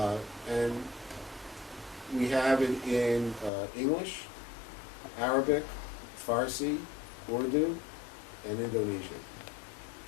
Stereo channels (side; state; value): right; drops out; at 3.5 s